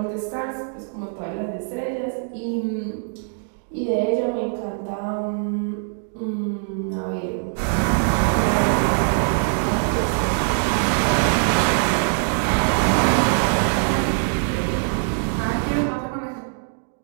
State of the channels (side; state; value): left; silent; 64 dB below the other